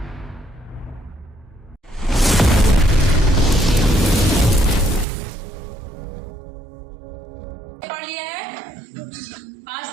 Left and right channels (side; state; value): left; drops out; at 5.1 s